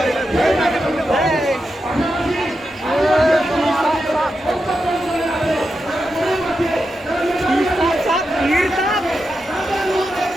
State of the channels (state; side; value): normal; both; correlation 0.88